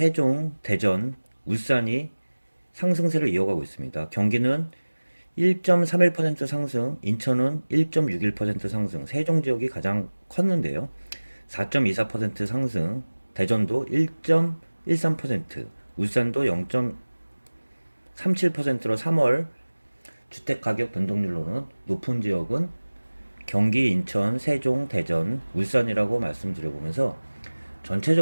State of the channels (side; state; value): both; inverted; correlation -1.00